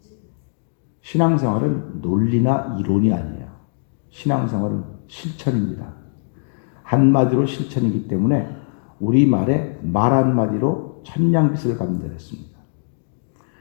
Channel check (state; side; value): silent; right; digital silence